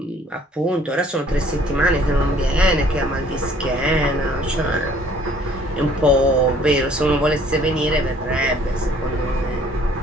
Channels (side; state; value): both; normal; correlation 0.58